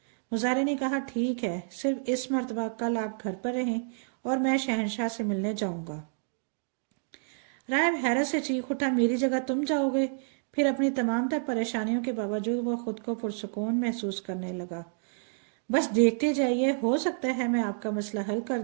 مزارے نے کہا، ٹھیک ہے، صرف اس مرتبہ کل آپ گھر پر رہیں اور میں شہنشاہ سے ملنے جاؤں گا۔ راہب حیرت سے چیخ اٹھا، میری جگہ تم جاؤ گے؟ پھر اپنی تمام تر پریشانیوں کے باوجود وہ خود کو پرسکون محسوس کرنے لگا۔ بس دیکھتے جائیے، ہو سکتا ہے میں آپ کا مسئلہ حل کر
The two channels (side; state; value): left; silent; digital silence